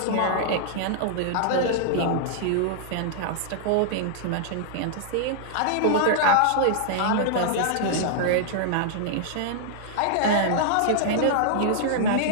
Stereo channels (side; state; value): both; different; correlation -0.01